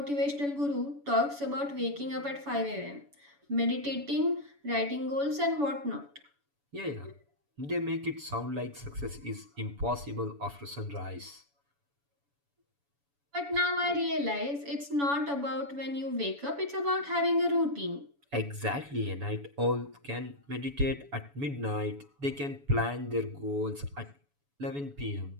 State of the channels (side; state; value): left; late; 7.0 ms